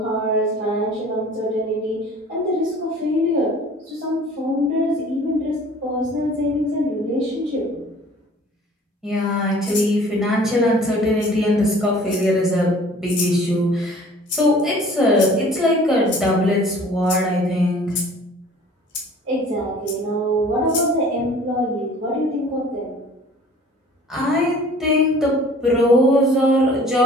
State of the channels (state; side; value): normal; both; correlation 0.49